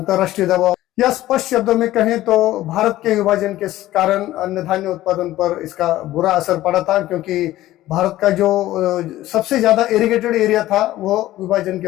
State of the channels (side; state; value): right; quieter; 15.2 dB